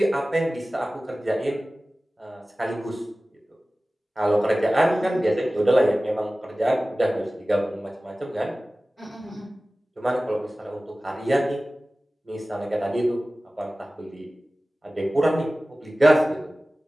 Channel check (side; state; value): both; normal; correlation 0.97